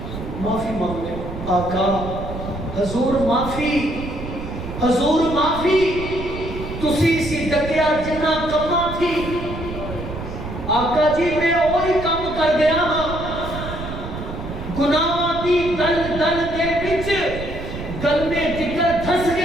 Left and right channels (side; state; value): right; noise; rumble, 8 dB below the sound